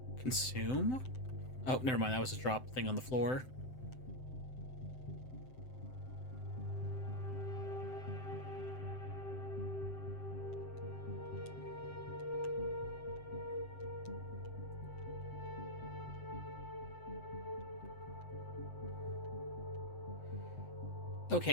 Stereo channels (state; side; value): late; right; 7.8 ms